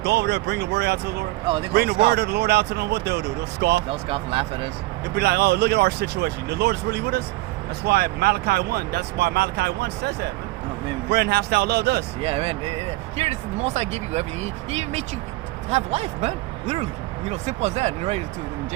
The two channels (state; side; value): quieter; left; 20.0 dB